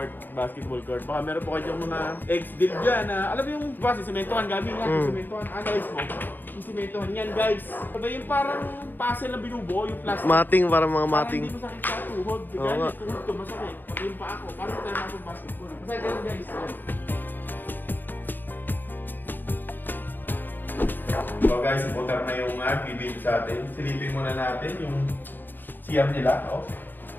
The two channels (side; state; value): right; late; 0.091 ms